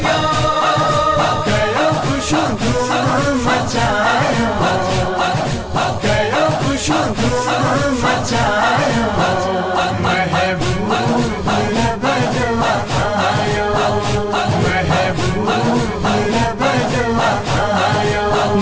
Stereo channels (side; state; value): both; identical; correlation 1.00